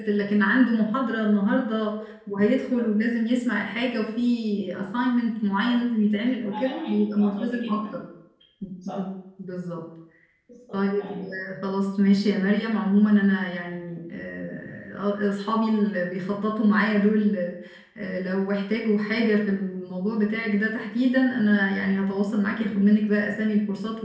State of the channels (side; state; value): both; identical; correlation 1.00